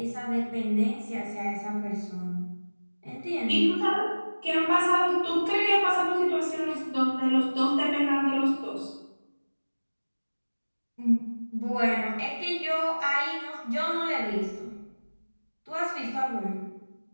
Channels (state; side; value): inverted; both; correlation -1.00